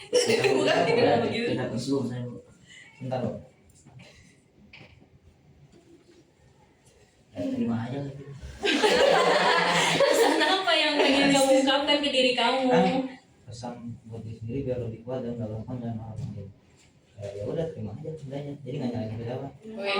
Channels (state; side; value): identical; both; correlation 1.00